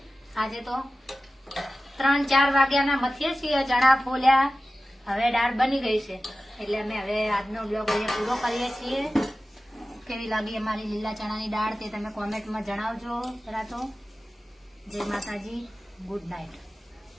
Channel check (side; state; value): both; normal; correlation 0.95